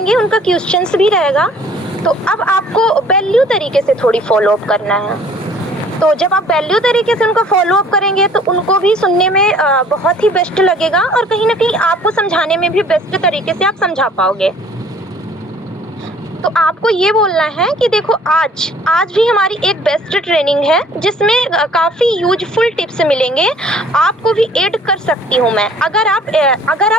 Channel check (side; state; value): both; normal; correlation 0.54